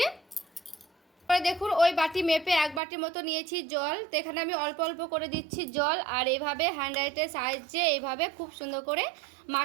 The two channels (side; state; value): left; drops out; at 2.8 s